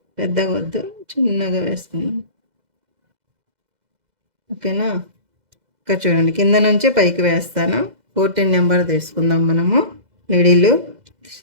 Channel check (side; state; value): left; late; 2.0 ms